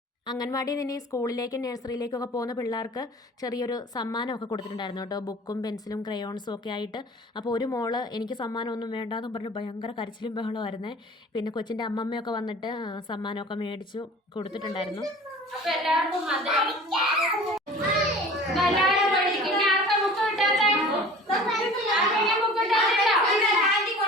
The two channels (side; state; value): both; normal; correlation 0.43